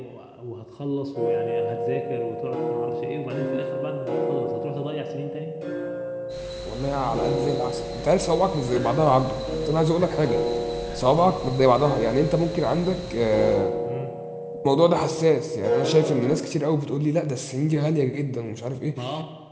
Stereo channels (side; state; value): both; identical; correlation 1.00